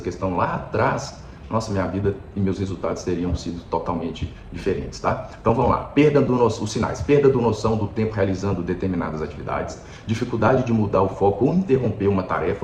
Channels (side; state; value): both; identical; correlation 1.00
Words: lá atrás, nossa, minha vida e meus resultados teriam sido totalmente diferentes, tá? Então vamos lá, os sinais, perda do noção do tempo realizando determinadas atividades, dificuldade de mudar o foco ou interromper uma